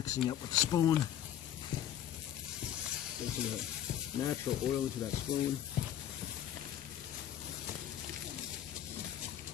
up with the spoon. Get some of that natural oil into that spoon.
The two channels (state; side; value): quieter; right; 10.8 dB